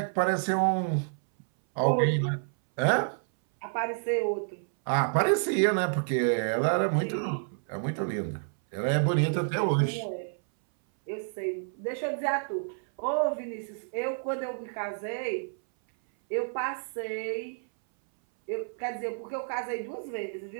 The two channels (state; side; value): silent; left; 58 dB below the other